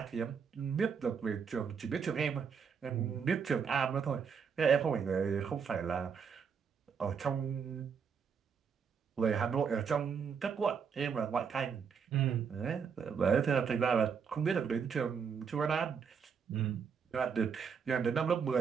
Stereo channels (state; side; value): quieter; left; 6.4 dB